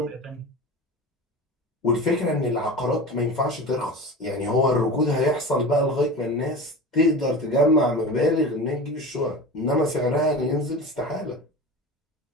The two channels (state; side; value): normal; both; correlation 0.31